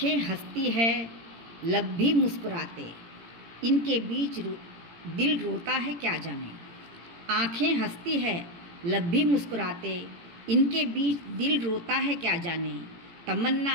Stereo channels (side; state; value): left; late; 17 ms